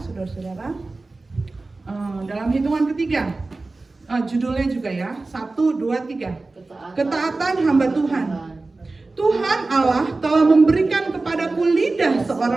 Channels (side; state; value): left; quieter; 3.4 dB